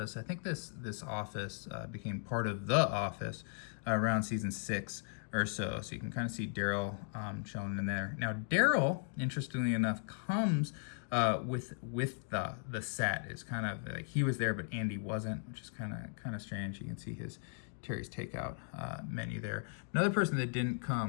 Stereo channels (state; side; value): silent; right; digital silence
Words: I think this office became part of the office around season 6 or so. So you can kind of see Daryl chilling in there. Now Daryl, interestingly enough, comes with the set. It's kind of like he was there, but Andy wasn't, which is kind of strange. You can see his Terry's Takeout menu there. Another person that didn't